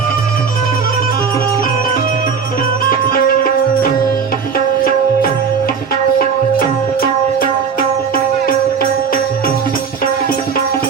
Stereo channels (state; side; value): quieter; left; 6.1 dB